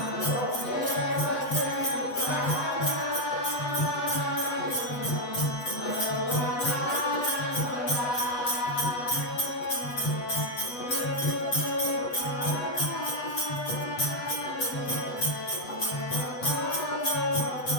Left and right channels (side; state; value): right; late; 8.0 ms